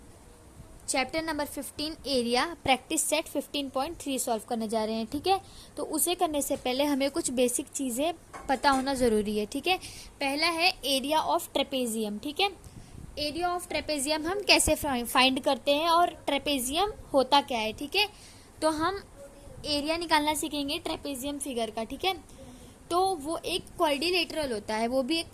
Chapter number 15 area practice set 15.3 solve करने जा रहे हैं। ठीक है, तो उसे करने से पहले हमें कुछ बेसिक चीज़ें पता होना ज़रूरी है। ठीक है, पहला है एरिया ऑफ ट्रेपेजियम। ठीक है, एरिया ऑफ ट्रेपेजियम हम कैसे फाइंड करते हैं और ट्रेपेजियम होता क्या है। ठीक है, तो हम एरिया निकालना सीखेंगे ट्रेपेजियम फिगर का। ठीक है, तो वो एक क्वाड्रिलेटरल होता है, वो भी एक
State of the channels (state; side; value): identical; both; correlation 1.00